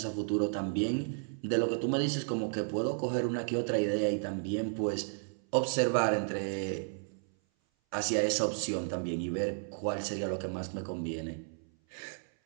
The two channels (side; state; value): left; silent; 56 dB below the other